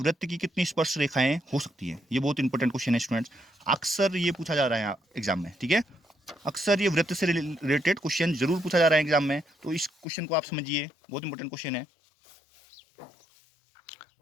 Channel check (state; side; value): drops out; right; at 10.1 s